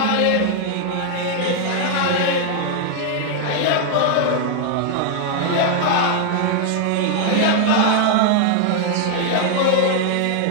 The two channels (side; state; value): both; different; correlation 0.00